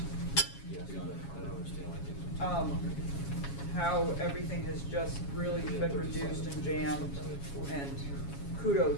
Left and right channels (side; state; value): right; late; 7.2 ms